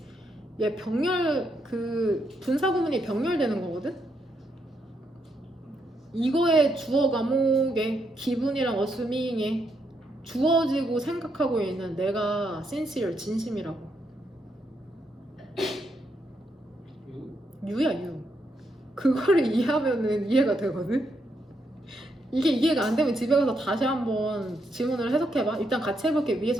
얘 병렬 그 분사 구문이 병렬되는 거거든. 이거의 주어 과목에 기분이랑 assuming에 주어지고 생각하고 있는 내가 sincere 진심이라고. 유야 유. 그거를 이해하면은 이해가 되거든. 이게 이해가 안 되면 집에 가서 다시 한번 지문을 해석해봐. 일단 같이 해볼게.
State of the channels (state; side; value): normal; both; correlation 0.79